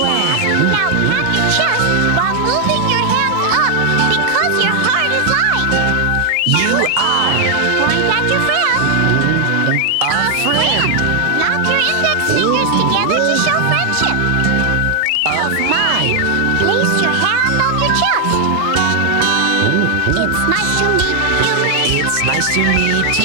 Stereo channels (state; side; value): late; left; 31 ms